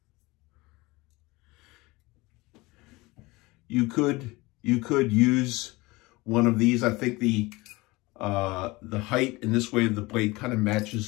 you could use one of these. I think the height in this way of the blade kind of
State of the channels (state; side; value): quieter; right; 22.2 dB